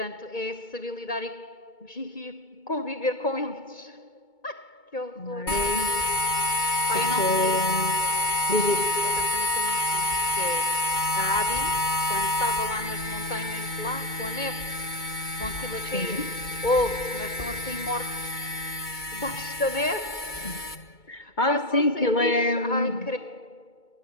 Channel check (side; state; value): right; late; 2.2 ms